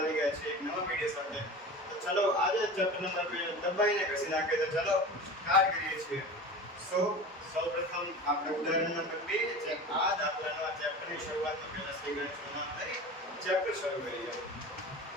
ગયા છે એક નવા વિડિયો સાથે. તો ચલો આજે ચેપ્ટર નંબર 2 દબાઈને ઘસી નાખીએ. તો ચલો સ્ટાર્ટ કરીએ છીએ. સૌપ્રથમ આપણે ઉદાહરણ નંબર 2 જે આ દાખલાના ચેપ્ટરની શરૂઆતમાં પહેલા શ્રી ગણેશનું નામ લઈ ચેપ્ટર શરૂ કરીએ.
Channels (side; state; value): both; normal; correlation 0.33